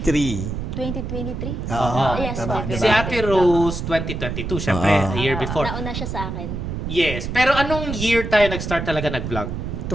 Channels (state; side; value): noise; right; rumble, 5 dB below the sound